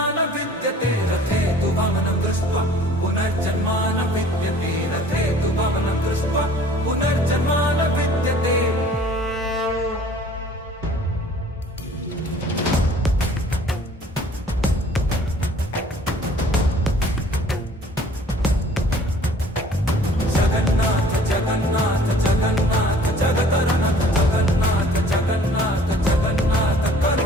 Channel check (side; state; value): both; normal; correlation 0.52